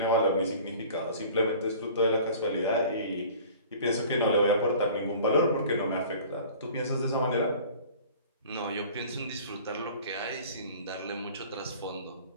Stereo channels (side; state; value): both; inverted; correlation -0.45